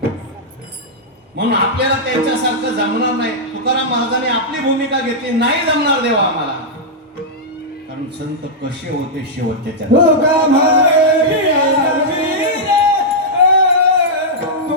म्हणून आपल्याला त्यांच्यासारखं जमणार नाही. तुकाराम महाराजांनी आपली भूमिका घेतली, नाही जमणार देवा आम्हाला. कारण संत कसे होते शेवटच्या चरणात. तुका म्हणे वीर्या वीर,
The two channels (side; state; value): both; normal; correlation -0.08